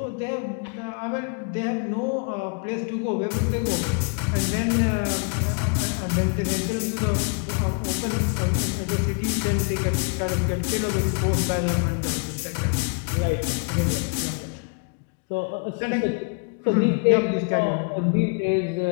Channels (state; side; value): quieter; right; 38.3 dB